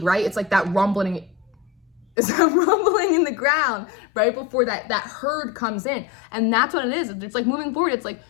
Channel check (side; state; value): right; drops out; at 2.1 s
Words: right? It's like that rumbling, it's that rumbling in the ground right before that herd comes in. And that's what it is. It's like moving forward, it's like